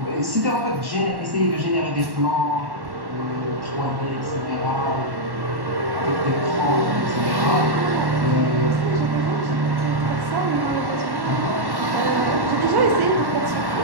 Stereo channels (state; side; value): late; left; 1.1 ms